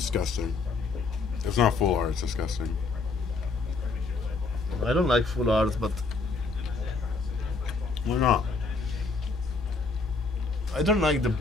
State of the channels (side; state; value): right; quieter; 4.0 dB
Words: It's not full art, it's disgusting. I don't like full art, but Why not? I don't like the